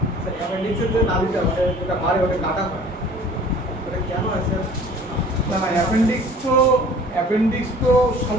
অ্যাপেন্ডিক্সের যে নালিটা যেটা বাড়ে ওটা কাটা হয়, এটা কেন হয় স্যার? না না, অ্যাপেন্ডিক্স তো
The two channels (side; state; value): both; normal; correlation 0.48